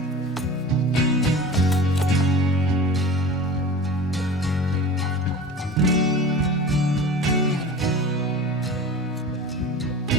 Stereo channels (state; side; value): normal; both; correlation 0.36